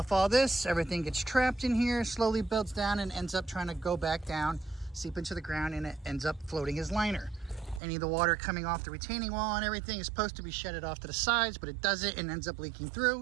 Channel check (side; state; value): left; drops out; at 7.8 s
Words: all this, everything gets trapped in here, slowly builds down and ends up trying to go back down, seep into the ground, and it ends up floating as liner. Any of the water coming off the retaining wall and everything is supposed to be shedded off to the sides, but it doesn't and ends up leaking